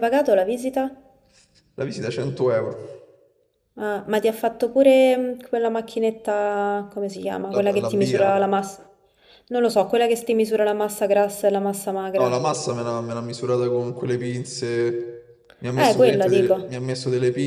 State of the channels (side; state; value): both; identical; correlation 1.00